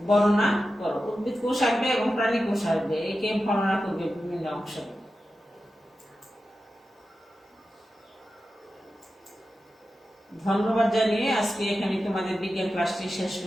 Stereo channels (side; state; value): both; normal; correlation 0.92